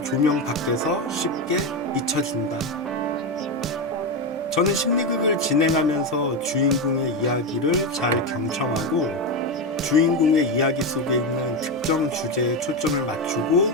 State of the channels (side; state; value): both; normal; correlation 0.13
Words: 조명 밖에서 쉽게 잊혀진다. 저는 심리극을 진행하면서 주인공의 이야기를 잘 경청하고 주인공의 이야기 속에 있는 특정 주제에 초점을 맞추고